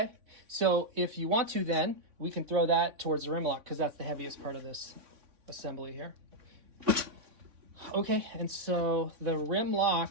So if you want to, then we can throw that towards the rim lock because that's the heaviest part of this assembly here. Okay, and so the rim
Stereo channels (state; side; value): late; left; 3.6 ms